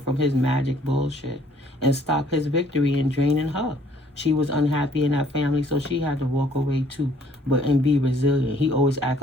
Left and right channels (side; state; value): both; normal; correlation 0.60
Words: from his magic bullshit and stopped his victory in draining her. She was unhappy in that family, so she had to walk away too, and be resilient. He always act